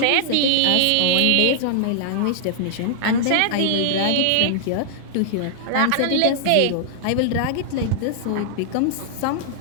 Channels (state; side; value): different; both; correlation -0.01